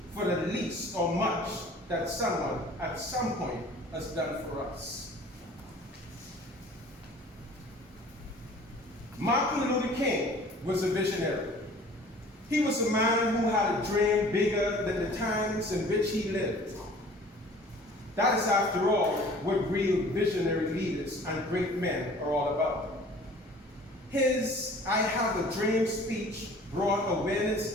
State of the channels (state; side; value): normal; both; correlation 0.48